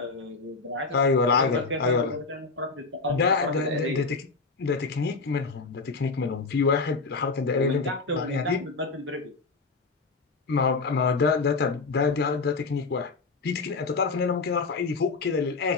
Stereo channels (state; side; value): quieter; right; 4.2 dB